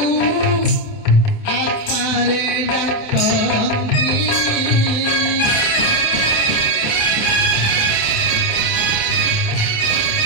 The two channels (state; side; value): late; right; 27 ms